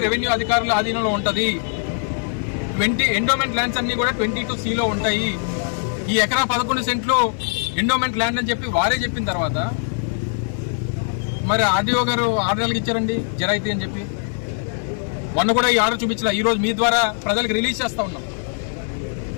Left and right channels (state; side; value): silent; right; digital silence